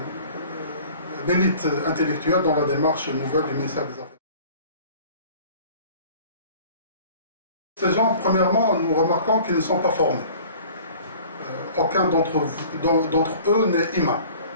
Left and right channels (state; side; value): inverted; both; correlation -0.47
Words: l'élite intellectuelle dans la démarche nouvelle du ministère des Affaires. Ces gens, premièrement, nous remarquons qu'ils ne sont pas formés. Aucun d'entre eux n'est imam.